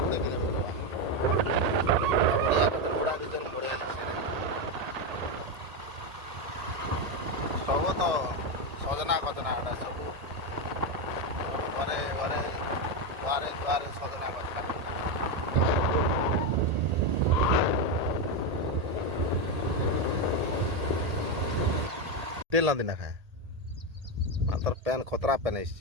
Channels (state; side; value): late; left; 1.8 ms